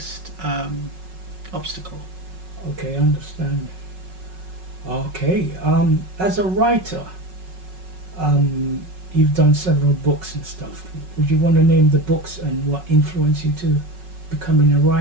obstacle. Okay, understand. Okay, as a writer, you've done several books and stuff. Would you want to name the books and what influenced you to becoming a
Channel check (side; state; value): left; late; 5.4 ms